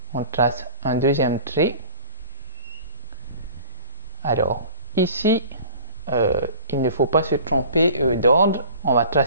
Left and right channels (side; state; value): both; inverted; correlation -0.43